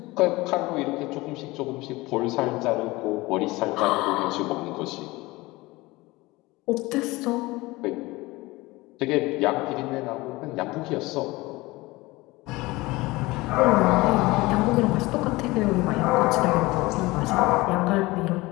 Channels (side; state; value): right; quieter; 21.1 dB